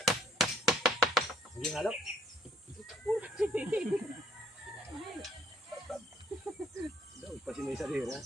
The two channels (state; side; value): normal; both; correlation 0.64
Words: Hindi halo. Daw, pasinay sa rira.